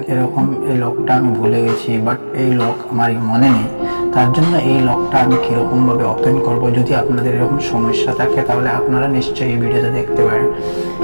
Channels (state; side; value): inverted; both; correlation -1.00